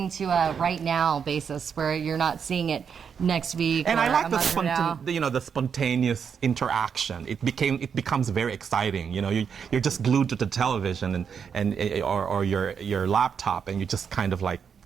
to a right now basis where you're not seeing it next week. And or I like a month from now. the spontaneous interaction. It becomes very exciting. You know, you're just glued to the television or your laptop, and you just kind of like.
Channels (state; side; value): quieter; left; 6.9 dB